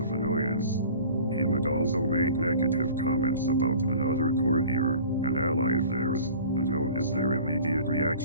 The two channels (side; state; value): both; inverted; correlation -0.45